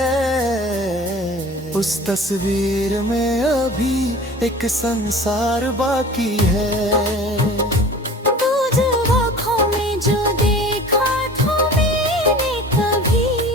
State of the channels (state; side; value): normal; both; correlation 0.42